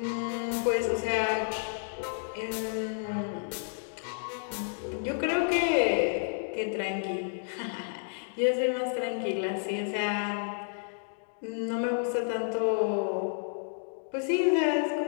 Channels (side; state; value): right; silent; digital silence